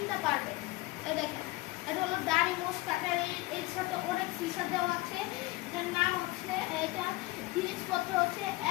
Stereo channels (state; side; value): quieter; right; 20.7 dB